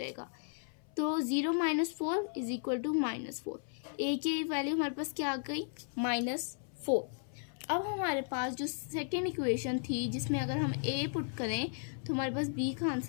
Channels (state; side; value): silent; right; 54 dB below the other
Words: तो 0 - 4 इज इक्वल टू -4। ए की वैल्यू हमारे पास क्या आ गई, -4। अब हमारे पास जो सेकेंड इक्वेशन थी जिसमें अगर हम ए पुट करें तो हमारे पास बी का